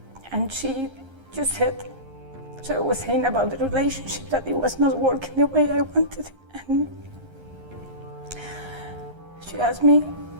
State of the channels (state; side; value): late; left; 11 ms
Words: she just said, so I was saying about the relationship that it was not working the way I wanted it, and she asked me,